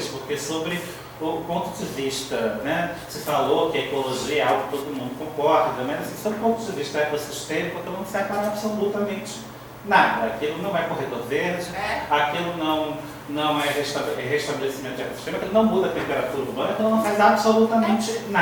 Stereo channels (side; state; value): both; identical; correlation 1.00